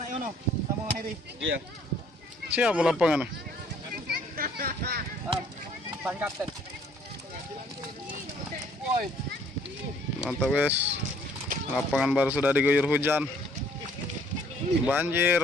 Yono sama Heri. Iya. siapa lapangan? Ban kapten. Mantap guys. Lapangan baru sudah diguyur hujan. Banjir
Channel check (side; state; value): both; normal; correlation 0.60